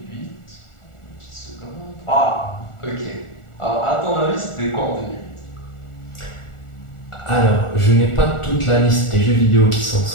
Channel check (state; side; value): late; right; 1.4 ms